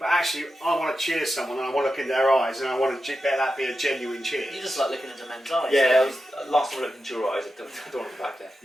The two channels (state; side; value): normal; both; correlation 0.90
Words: actually I want to cheers someone and I want to look in their eyes and I want to bet that be a genuine cheers. You just like looking into men's eyes. Yeah, last time I looked into your eyes, I don't want to go back there.